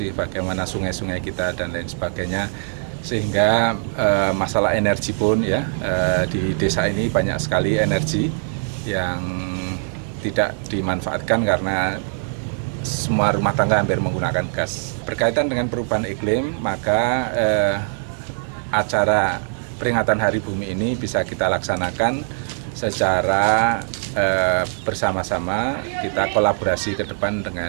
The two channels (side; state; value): left; silent; digital silence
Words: bagaimana sungai-sungai kita dan lain sebagainya. Sehingga masalah energi pun ya, di desa ini banyak sekali energi yang tidak dimanfaatkan karena semua rumah tangga hampir menggunakan gas. Berkaitan dengan perubahan iklim, maka acara peringatan Hari Bumi ini bisa kita laksanakan secara bersama-sama, kita kolaborasi ke depan